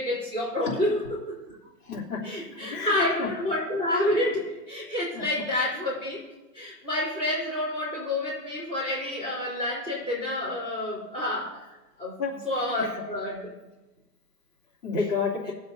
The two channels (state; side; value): normal; both; correlation 0.15